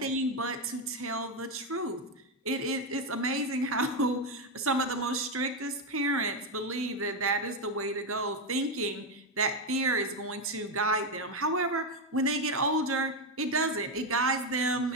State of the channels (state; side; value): normal; both; correlation 0.07